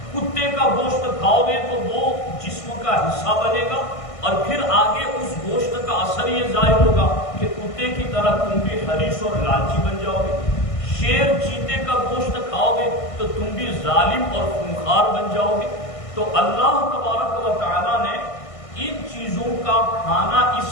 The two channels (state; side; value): late; right; 1.6 ms